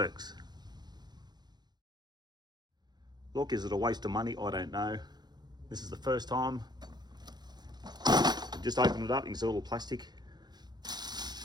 Look, is it a waste of money? I don't know. This is the first time. Just open it up, you can see a little plastic.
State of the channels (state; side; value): late; left; 0.20 ms